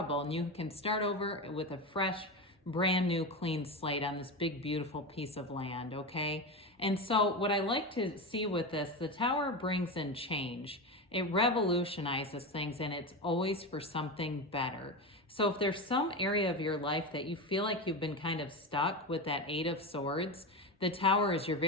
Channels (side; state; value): both; normal; correlation 0.19